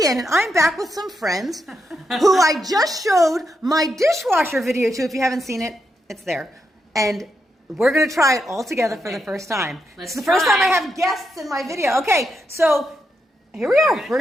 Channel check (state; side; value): normal; both; correlation 0.83